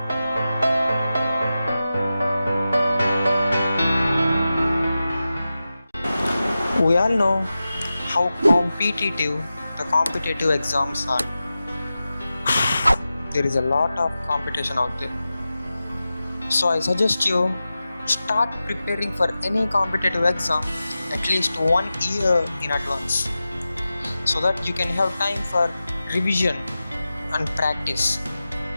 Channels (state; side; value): inverted; both; correlation -0.94